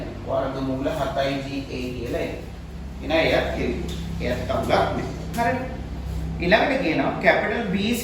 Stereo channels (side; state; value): both; identical; correlation 1.00